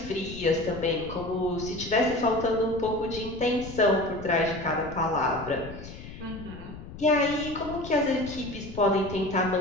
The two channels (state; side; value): noise; left; rumble, 13 dB below the sound